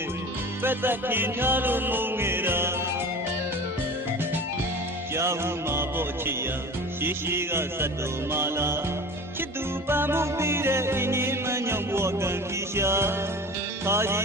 ်ပက်သက်ခင်ထားလို့မုန်းငယ်တာကြားဟုမှာပေါ့ချစ်ရရှိကစတ်တော်မာလာချစ်သူပန်းမှုပြီးတဲ့အင်းကြီးမညောင်ဘဝကံကြီးရှာခါရ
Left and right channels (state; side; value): normal; both; correlation 0.36